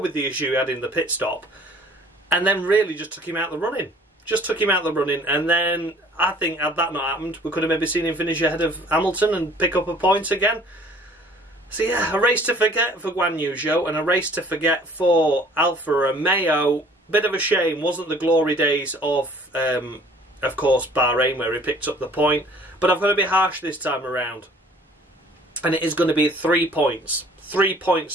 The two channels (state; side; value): normal; both; correlation 0.53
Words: the issue he had in the pit stop. And then really just took him out the running. Just took him out the running. And then, I think, had that not happened, we could have maybe seen him finish ahead of Hamilton and pick up a point again. So yeah, a race to forget for Guangnu Zhou and a race to forget for Alfa Romeo. Bit of a shame, wasn't the glory days of course, Bahrain, where he picked up the point. But I've got to be harsh this time around. And it is going to be 3 points. 3